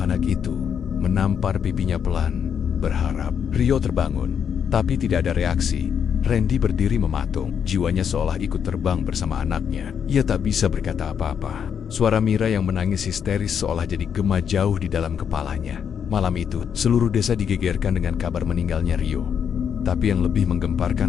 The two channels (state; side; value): quieter; right; 7.7 dB